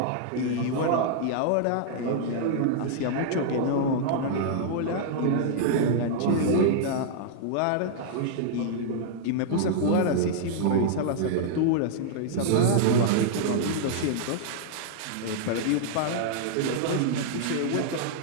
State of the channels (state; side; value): different; both; correlation -0.01